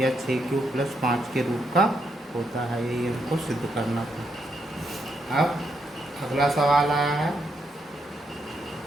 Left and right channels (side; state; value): both; normal; correlation 0.79